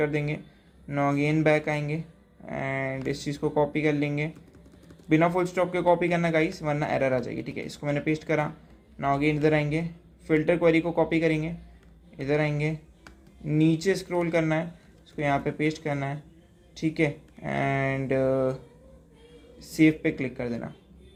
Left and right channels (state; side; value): identical; both; correlation 1.00